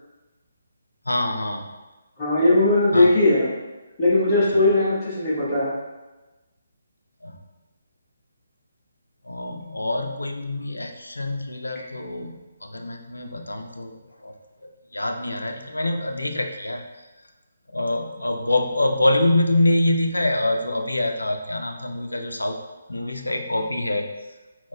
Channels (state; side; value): inverted; both; correlation -0.81